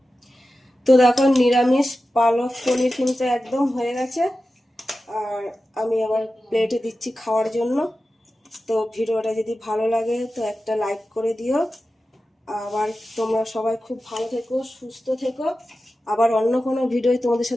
তো দেখো নিরামিষ পালক পনির কিন্তু একদম হয়ে গেছে। আর আমি আবার প্লেটে দিচ্ছি খাওয়ার জন্য। তো ভিডিওটা যদি ভালো লাগে তো একটা লাইক করে দিও। আবার তোমরা সবাই খুব ভালো থেকো, সুস্থ থেকো। আবার অন্য কোনো ভিডিও তোমাদের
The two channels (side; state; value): both; normal; correlation 0.93